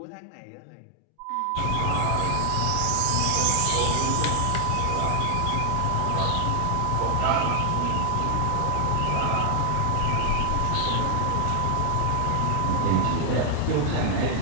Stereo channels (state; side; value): different; both; correlation 0.00